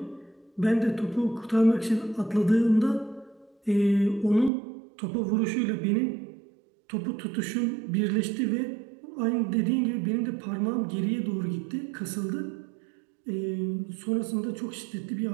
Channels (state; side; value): drops out; left; at 4.5 s